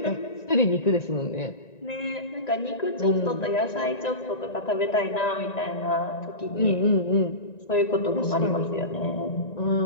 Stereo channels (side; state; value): right; late; 1.9 ms